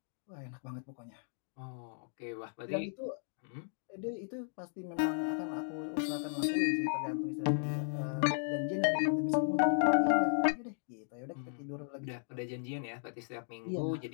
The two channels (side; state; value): right; silent; digital silence